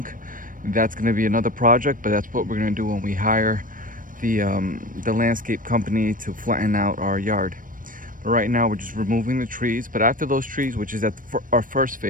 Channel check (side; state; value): left; late; 0.40 ms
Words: That's gonna be another project, but that's what we're gonna do when we hire the landscape company to flatten out our yard. But right now we're just removing the trees. But after those trees, which is at our first